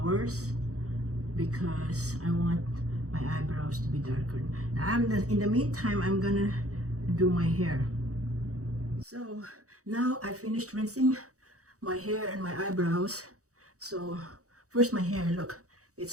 because I want my eyebrows to be darker. Now in the meantime I'm gonna do my hair. So now I finished rinsing my hair and my eyebrows. So first my hair, look,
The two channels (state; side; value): late; left; 0.65 ms